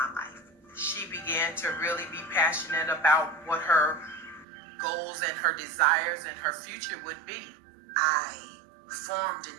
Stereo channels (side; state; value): left; drops out; at 4.5 s